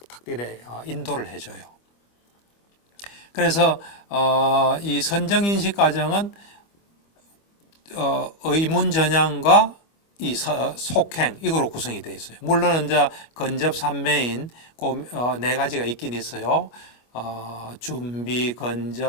이래 인도를 해줘요. 그래서 이 선정인식 과정은 의문전향과 이 속행 이거로 구성이 되어 있어요. 물론 이제 건접 삼매인 그 4가지가 있긴 있어요. 준비,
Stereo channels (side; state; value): right; late; 25 ms